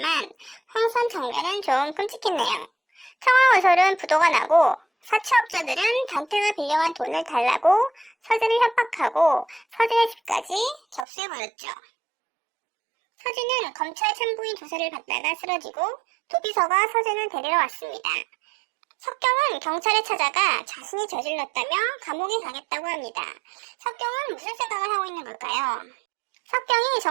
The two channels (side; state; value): left; drops out; at 11.1 s